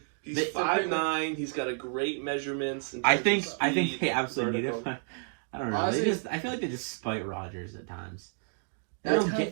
he's They- 5'9". He's got a great measurements. In I terms think of I think speed, they absolutely need vertical. it. I don't know. Honestly- I feel like they just spite Rodgers at times. They That's don't kind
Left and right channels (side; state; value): left; silent; 58 dB below the other